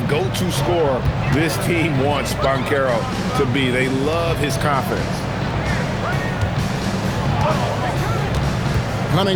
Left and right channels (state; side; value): identical; both; correlation 1.00